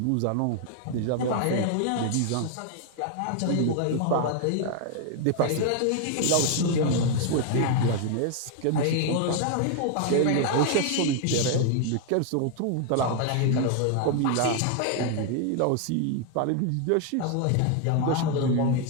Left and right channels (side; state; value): both; different; correlation 0.00